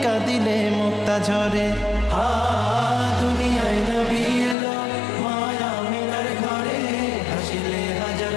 কাঁদিলে মুক্তা ঝরে। দুনিয়ায় নবী এলো মায়া মেনার ঘরে, হাসিলে হাজার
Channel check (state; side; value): drops out; right; at 4.5 s